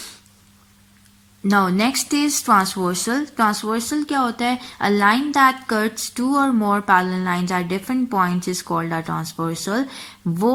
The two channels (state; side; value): identical; both; correlation 1.00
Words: now next is transversal. Transversal क्या होता है, a line that cuts two or more parallel lines at different points is called a transversal.